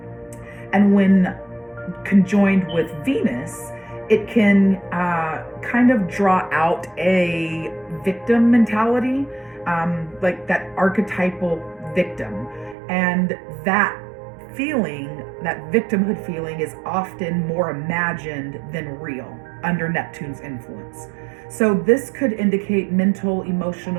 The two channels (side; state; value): left; drops out; at 12.8 s